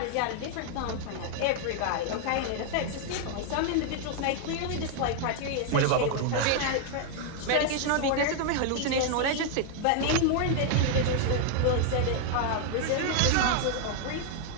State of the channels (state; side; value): different; both; correlation 0.00